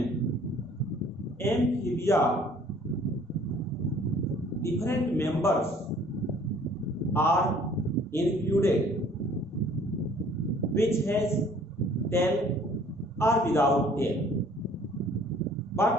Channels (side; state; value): both; normal; correlation 0.55